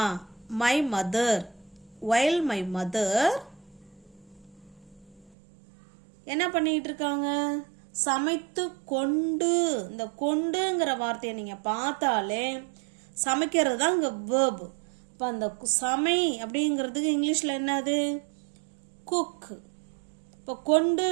மை மதர். வயல் மை மதர் என்ன பண்ணிட்டு இருக்காங்க? சமைத்து கொண்டு. இந்த கொண்டுங்கிற வார்த்தையை நீங்க பார்த்தாலே சமைக்கிறது தான் இங்க வேர்ப். இப்போ அந்த சமை அப்படிங்கிறதுக்கு இங்கிலீஷ்ல என்னது? குக். இப்போ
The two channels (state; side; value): drops out; left; at 5.4 s